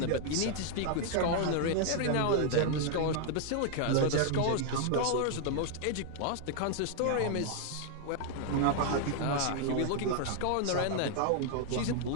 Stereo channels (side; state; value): both; different; correlation 0.00